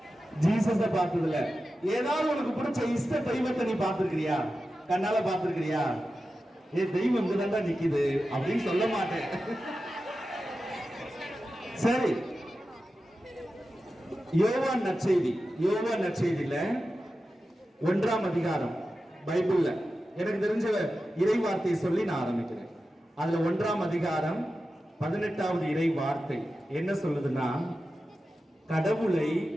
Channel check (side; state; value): both; normal; correlation 0.92